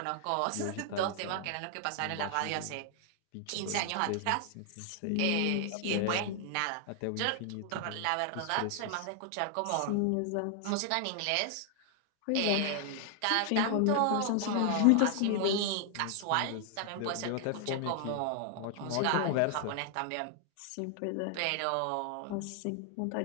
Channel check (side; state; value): both; different; correlation 0.00